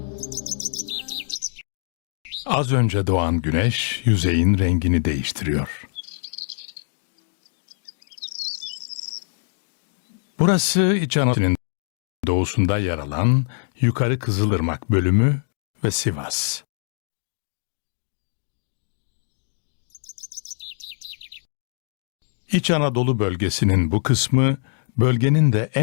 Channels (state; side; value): silent; right; digital silence